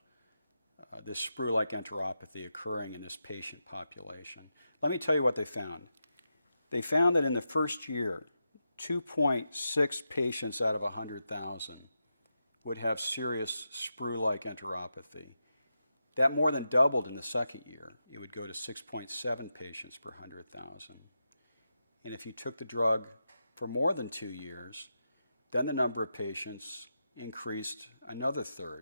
this sprue-like enteropathy occurring in this patient population. Let me tell you what they found. They found that in the first year, 2.6 patients out of 100,000 would have serious sprue-like enteropathy. That more than doubled in the second year. It would go to 6.7 patients per 100,000. And if you took the drug for more than 2 years, then the number of patients increased another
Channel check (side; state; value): both; inverted; correlation -0.87